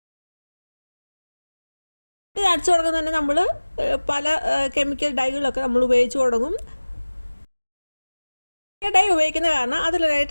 മുടി നരച്ചു തുടങ്ങുന്ന തന്നെ നമ്മൾ പല കെമിക്കൽ ഡൈകളൊക്കെ നമ്മൾ ഉപയോഗിച്ച് തുടങ്ങും. ഡൈ ഉപയോഗിക്കുന്ന കാരണം അതിൽ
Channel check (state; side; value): inverted; both; correlation -1.00